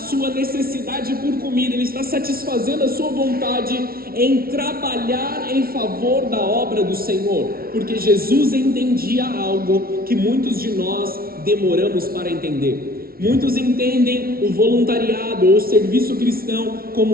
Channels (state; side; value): late; left; 0.44 ms